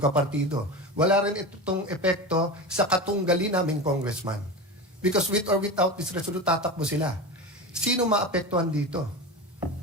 Wala rin itong epekto sa katunggali naming congressman. Because with or without this resolution, tatakbo sila. Sino maapektuhan dito?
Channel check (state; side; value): normal; both; correlation 0.26